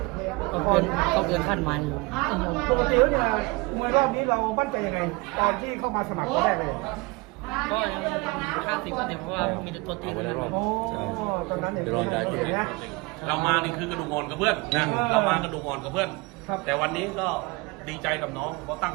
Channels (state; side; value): quieter; left; 25.4 dB